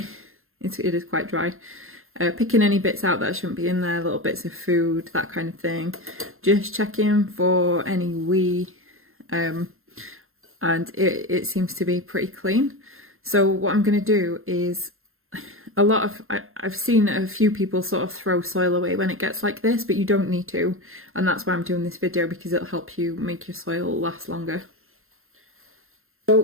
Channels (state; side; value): late; left; 0.61 ms